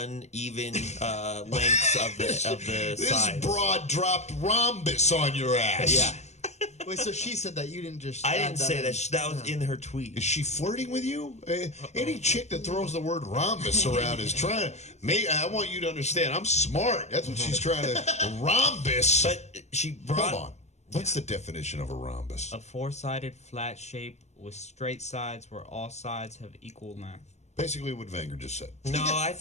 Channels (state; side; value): late; right; 0.32 ms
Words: lengths of the This sides. broad dropped rhombus on your ass. Yeah. Wait, so she said that you didn't just. I add didn't say in? that. That was in her tweet. Is she flirting with you? Any chick that throws the word rhombus around is trying to. I want you to understand. I'm smart. That's what she's trying to. Rhombus. But she brought. Hold on. What's the definition of a rhombus? A four-sided flat shape with straight sides where all sides have equal length. Basically, what Wenger just said. No, I